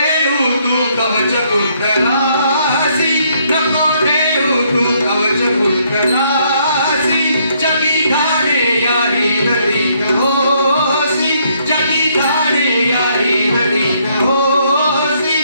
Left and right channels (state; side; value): inverted; both; correlation -0.70